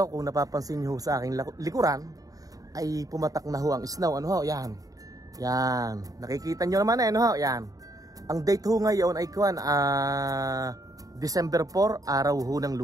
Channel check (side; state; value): left; late; 0.17 ms